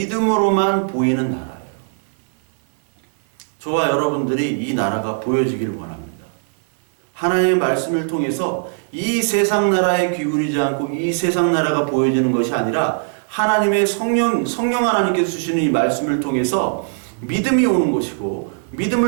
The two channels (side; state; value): left; silent; 61 dB below the other